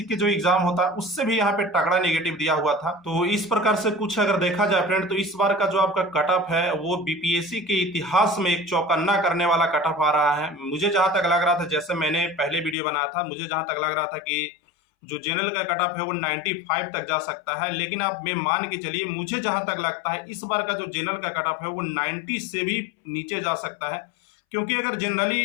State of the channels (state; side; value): drops out; right; at 12.8 s